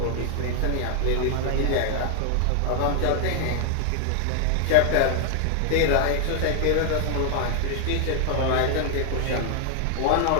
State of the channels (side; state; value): both; different; correlation 0.00